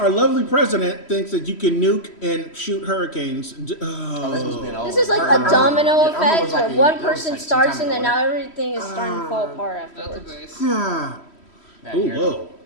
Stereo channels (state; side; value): late; right; 3.1 ms